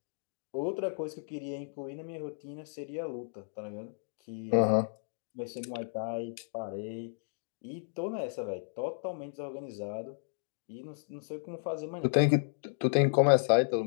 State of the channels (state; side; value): silent; right; digital silence